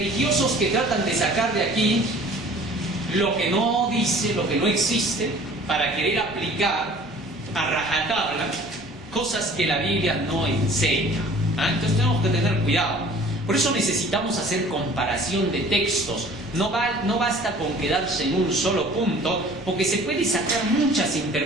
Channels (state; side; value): normal; both; correlation 0.49